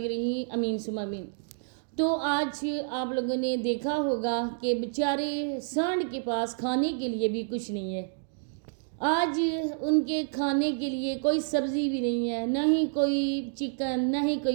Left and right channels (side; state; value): left; silent; digital silence